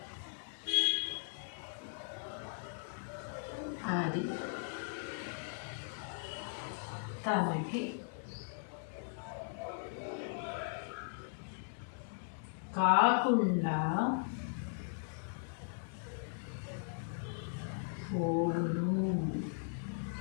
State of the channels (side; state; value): right; silent; 52 dB below the other